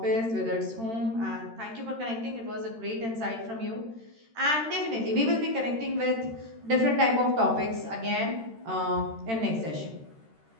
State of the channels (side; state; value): left; late; 13 ms